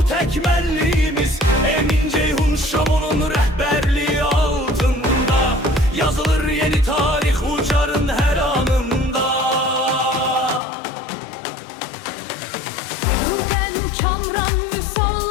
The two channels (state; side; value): drops out; right; at 10.6 s